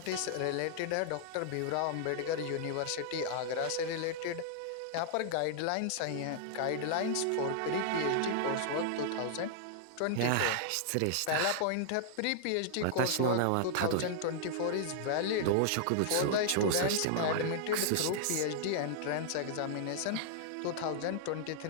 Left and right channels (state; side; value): different; both; correlation -0.01